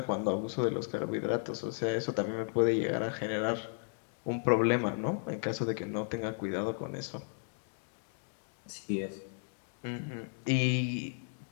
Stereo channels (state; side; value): silent; right; 55 dB below the other